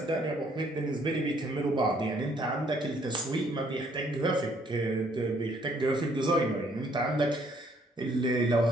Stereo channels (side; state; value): both; normal; correlation 0.65